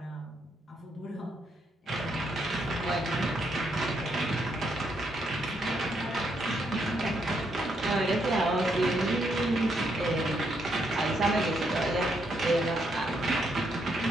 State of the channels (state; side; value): normal; both; correlation 0.76